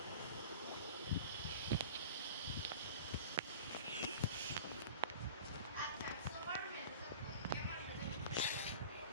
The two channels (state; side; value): inverted; both; correlation -0.38